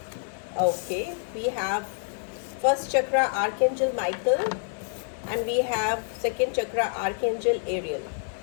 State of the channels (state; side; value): silent; right; digital silence